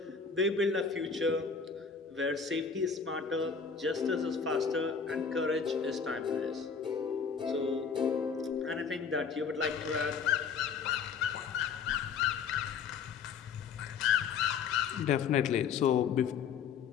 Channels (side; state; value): right; quieter; 6.1 dB